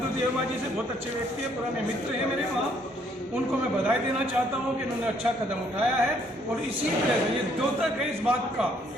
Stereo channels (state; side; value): normal; both; correlation 0.67